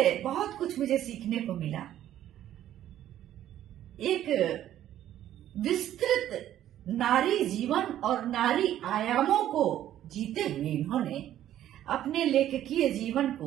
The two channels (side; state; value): left; quieter; 12.0 dB